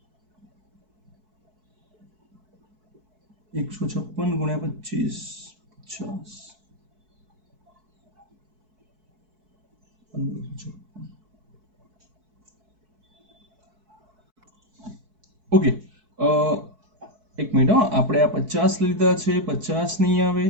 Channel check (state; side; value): late; left; 4.6 ms